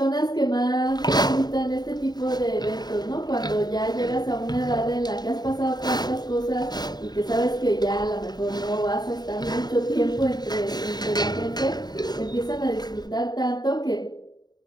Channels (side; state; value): right; late; 0.20 ms